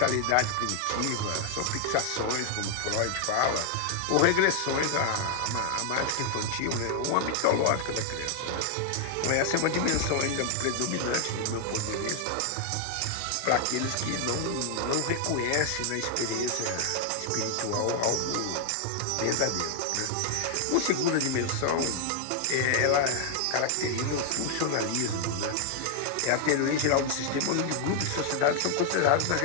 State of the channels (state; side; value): different; both; correlation 0.00